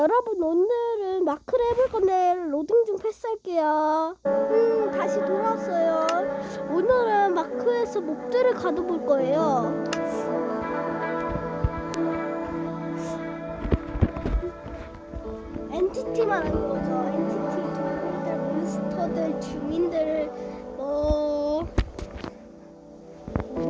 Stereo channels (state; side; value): identical; both; correlation 1.00